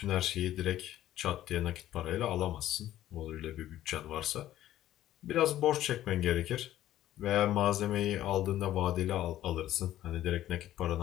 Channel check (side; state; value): right; quieter; 13.3 dB